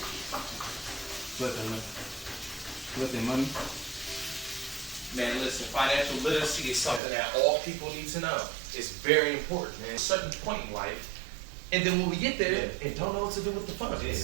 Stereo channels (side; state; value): left; drops out; at 7.0 s